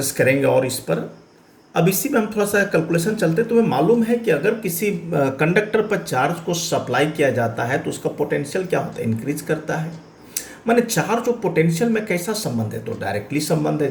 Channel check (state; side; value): identical; both; correlation 1.00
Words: करेंगे और इस पर। अब इसी में हम थोड़ा सा कैलकुलेशन चलते। तुम्हें मालूम है कि अगर किसी कंडक्टर पर चार्ज को सप्लाई किया जाता है तो उसका पोटेंशियल क्या होता है, इंक्रीज करता है। माने चार्ज और पोटेंशियल में कैसा संबंध है, तो डायरेक्टली संबंध है।